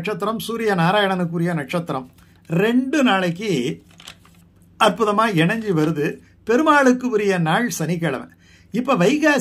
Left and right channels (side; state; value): both; identical; correlation 1.00